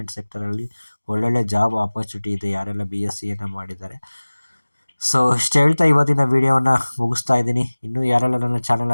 ಸೆಕ್ಟರಲ್ಲಿ ಒಳ್ಳೊಳ್ಳೆ ಜಾಬ್ ಆಪರ್ಚುನಿಟಿ ಇದೆ ಯಾರೆಲ್ಲ BScಯನ್ನು ಮಾಡಿದ್ದಾರೆ. ಸೊ ಇಷ್ಟು ಹೇಳ್ತಾ ಇವತ್ತಿನ ವೀಡಿಯೋನ ಮುಗಿಸ್ತಾ ಇದ್ದೀನಿ. ಇನ್ನೂ ಯಾರೆಲ್ಲ ನನ್ನ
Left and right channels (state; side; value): inverted; both; correlation -1.00